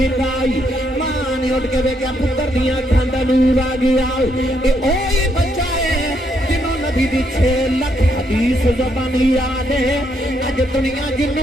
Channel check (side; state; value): both; normal; correlation 0.75